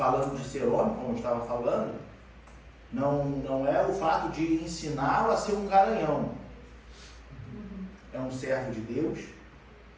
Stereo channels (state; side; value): identical; both; correlation 1.00